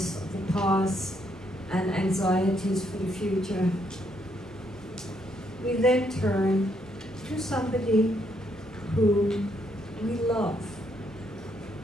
of the past and anxieties for the future, we then turn to somebody who we love,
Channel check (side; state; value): both; normal; correlation 0.74